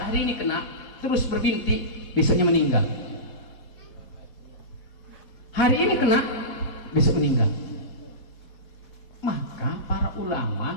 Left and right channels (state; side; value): late; right; 3.8 ms